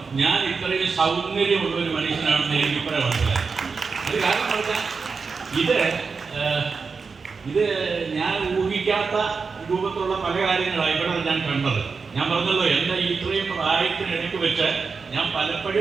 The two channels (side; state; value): left; quieter; 5.0 dB